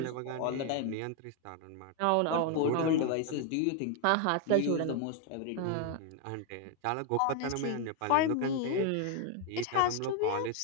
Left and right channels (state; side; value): different; both; correlation 0.01